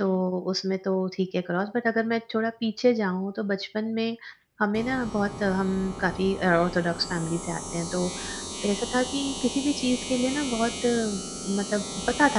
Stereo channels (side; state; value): both; identical; correlation 1.00